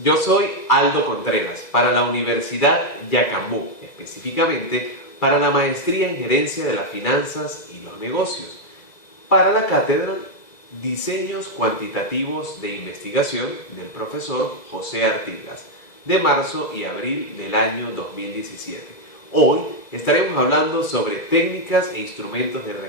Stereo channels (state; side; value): late; right; 2.0 ms